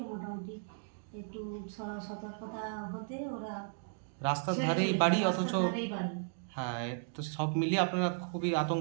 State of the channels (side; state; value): left; silent; digital silence